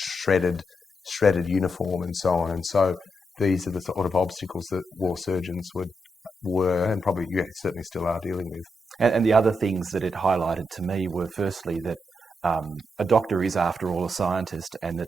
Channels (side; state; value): both; normal; correlation 0.83